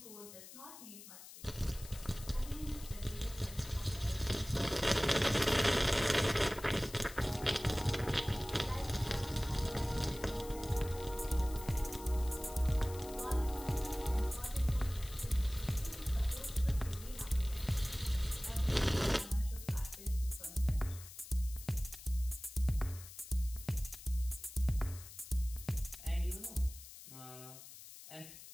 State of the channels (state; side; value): noise; left; hiss, 15 dB below the sound